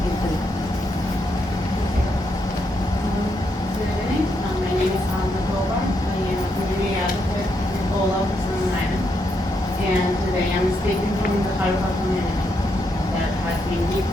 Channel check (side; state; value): both; normal; correlation 0.79